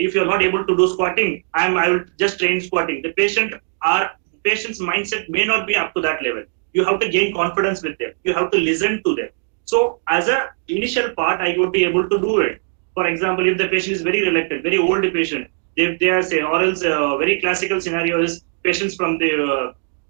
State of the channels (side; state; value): left; silent; digital silence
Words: you're not able to do squatting, I will just train squatting. The patient's mindset may not be up to that level. You have to gain confidence with them. You have to listen to them. So as a initial part, I would be able to do it. For example, if the patient is very reluctant, very old patient, if they are say, or else very classical scenario is patients from the